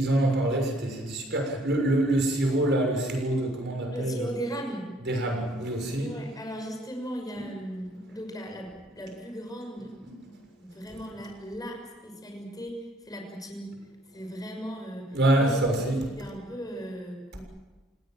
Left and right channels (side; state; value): both; normal; correlation 0.62